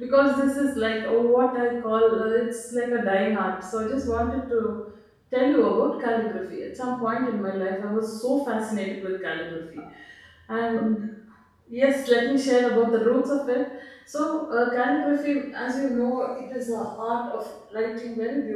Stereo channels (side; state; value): both; identical; correlation 1.00